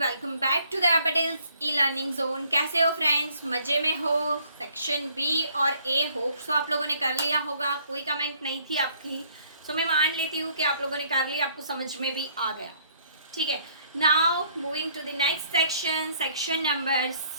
Welcome back to the Patels e learning zone. कैसे हो friends? मजे में हो? सेक्शन बी और ए होप सो आप लोगों ने कर लिया होगा। कोई कमेंट नहीं थी आपकी, सो मैं मान लेती हूँ कि आप लोगों ने कर लिया, आपको समझ में भी आ गया। ठीक है, now moving to the next section, section number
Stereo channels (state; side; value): inverted; both; correlation -0.64